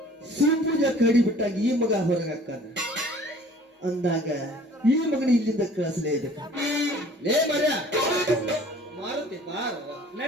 ಸಿಂಪೂಜ ಕಡಿ ಬಿಟ್ಟಾಗ ಈ ಮಗ ಹೊರಗೆ ಹಾಕಾನ ಅಂದಾಗ ಈ ಮಗನ ಇಲ್ಲಿಂದ ಕಳಿಸಲೇಬೇಕು ಲೇ ಮರ್ಯ ಮಾರುತಿ ಬಾರ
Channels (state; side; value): normal; both; correlation 0.50